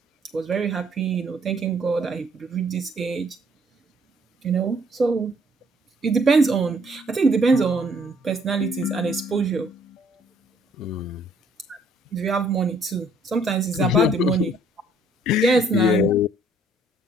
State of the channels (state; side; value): normal; both; correlation 0.64